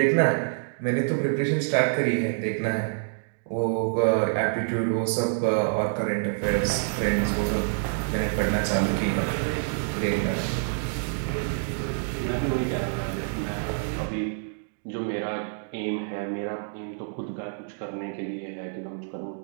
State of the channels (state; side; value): silent; left; digital silence